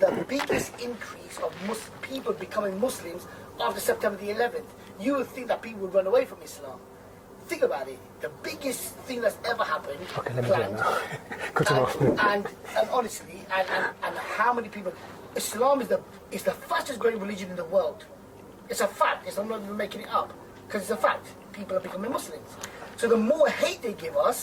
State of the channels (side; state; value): both; identical; correlation 1.00